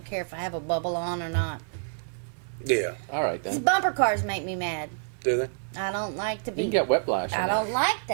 care if I have a bubble on or not. Yeah. All right These then. bumper cars make me mad. Do they? I don't like to You be. can get whiplash. I on don't that. like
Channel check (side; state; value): left; silent; 60 dB below the other